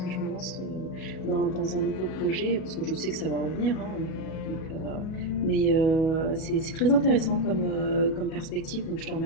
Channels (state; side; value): late; right; 37 ms